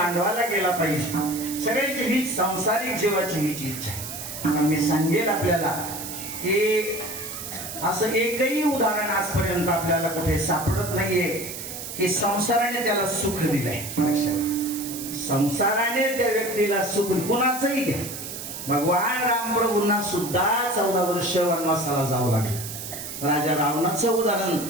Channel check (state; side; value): noise; right; hiss, 9 dB below the sound